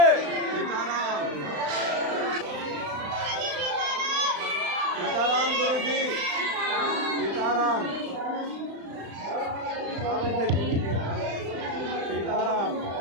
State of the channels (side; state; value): left; late; 35 ms